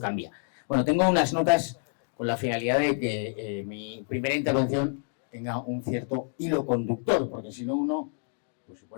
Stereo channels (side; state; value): right; silent; 59 dB below the other